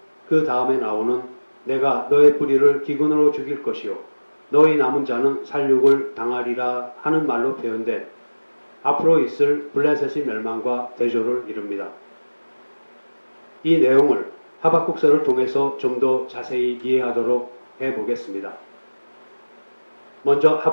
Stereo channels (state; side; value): inverted; both; correlation -1.00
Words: 그 다음에 나오는 내가 너의 뿌리를 기근으로 죽일 것이요 너희 남은 자는 살육을 당하리라 하는 말로 표현된 앞으로 있을 블레셋의 멸망과 대조를 이룹니다. 이 내용을 하박국서를 통해서 좀 더 자세히 이해하도록 해보겠습니다. 먼저